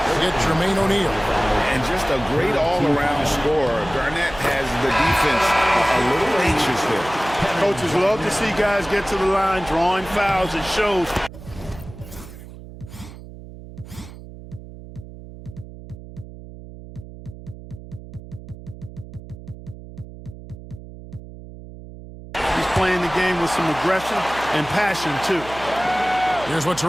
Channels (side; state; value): right; noise; hum, 15 dB below the sound